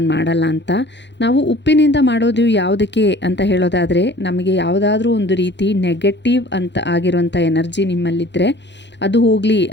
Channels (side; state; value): right; late; 0.52 ms